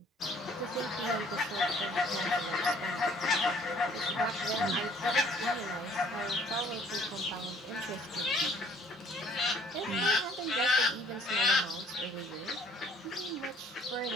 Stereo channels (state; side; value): normal; both; correlation 0.59